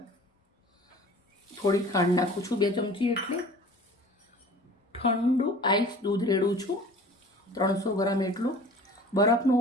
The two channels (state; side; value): normal; both; correlation 0.44